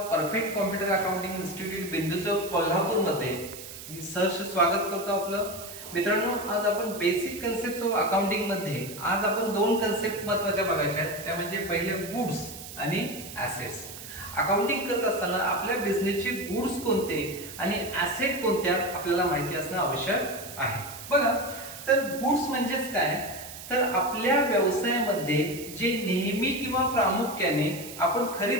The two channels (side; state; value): right; noise; hiss, 13 dB below the sound